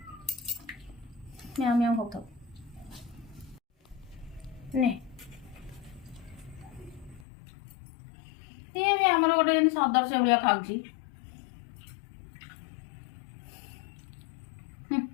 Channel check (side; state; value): right; drops out; at 7.2 s